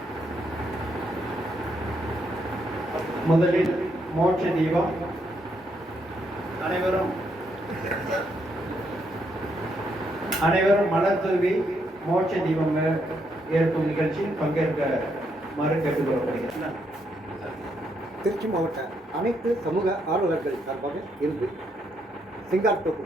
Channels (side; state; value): both; normal; correlation 0.76